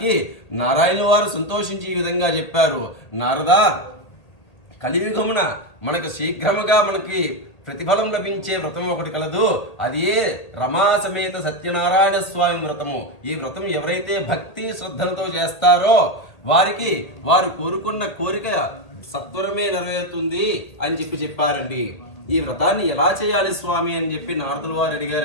నారాయణ వారు సంతోషించి ఈ విధంగా చెప్పారు. నారదా, కలియుగమున మనకు శీఘ్రముగా మనకి ప్రతిఫలం లభించే వ్రతం ఒకటి కలదు. అది రమా సమేత సత్యనారాయణ స్వామి వ్రతము. ఈ వ్రతం ఎవరైతే భక్తి శ్రద్ధలతో చేస్తారో వారికి వారు కోరుకున్న కోరిక సత్వరమే నెరవేరుతుంది అని చెప్పారండి. ఈ వ్రతాన్ని ఎలా చేయాలి స్వామి అని చెప్పి నారదుల వారు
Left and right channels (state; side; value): late; right; 1.8 ms